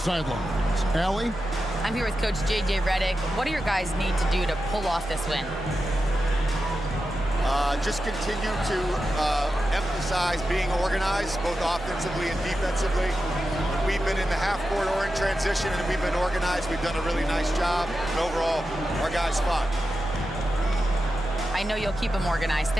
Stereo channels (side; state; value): both; normal; correlation 0.90